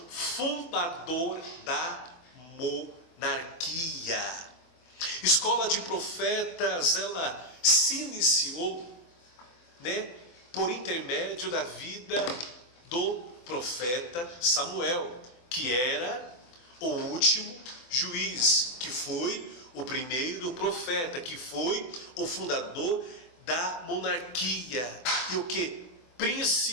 fundador da monarquia. Escola de profetas, ela se iniciou, por intermédio da vida do profeta Samuel, que era o último juiz, que foi o primeiro profeta, que foi o fundador da monarquia, e o que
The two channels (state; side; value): late; right; 24 ms